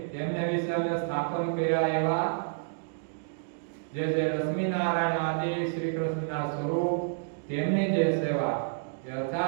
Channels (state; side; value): silent; left; digital silence